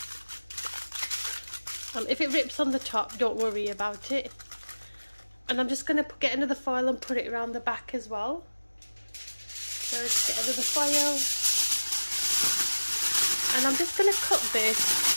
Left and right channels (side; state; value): both; inverted; correlation -1.00